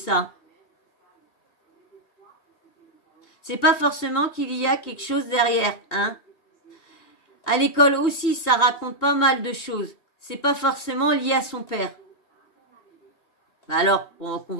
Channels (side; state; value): right; late; 2.8 ms